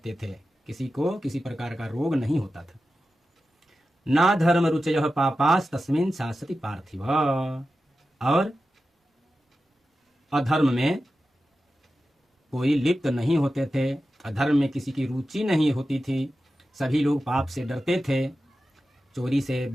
थे, किसी को किसी प्रकार का रोग नहीं होता था। ना धर्म रुचयः पापास तस्मिन् शासति पार्थिव, और अधर्म में कोई लिप्त नहीं होते थे, अधर्म में किसी की रुचि नहीं होती थी। सभी लोग पाप से डरते थे, चोरी से,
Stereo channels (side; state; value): both; normal; correlation 0.92